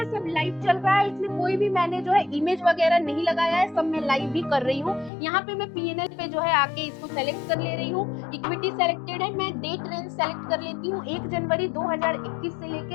सब लाइव चल रहा है, इसमें कोई भी मैंने जो है इमेज वगैरह नहीं लगाया है, सब मैं लाइव भी कर रही हूँ। यहाँ पे मैं पीएनएल पे जो है आके इसको सेलेक्ट कर ले रही हूँ, इक्विटी सेलेक्टेड है, मैं डेट रेंज सेलेक्ट कर लेती हूँ 1 जनवरी 2021 से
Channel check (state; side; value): drops out; right; at 5.1 s